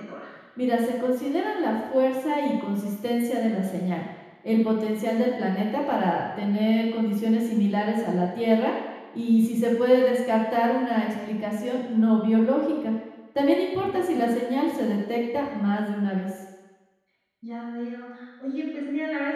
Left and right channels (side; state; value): both; identical; correlation 1.00